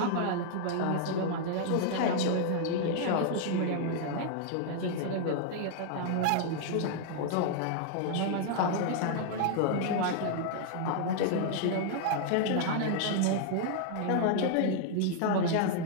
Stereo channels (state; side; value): different; both; correlation -0.01